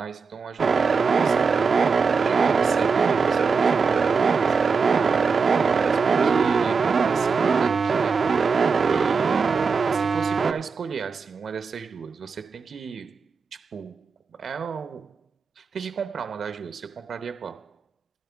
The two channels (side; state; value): left; quieter; 5.2 dB